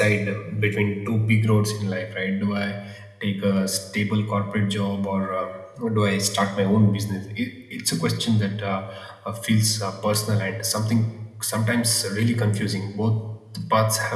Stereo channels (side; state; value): both; identical; correlation 1.00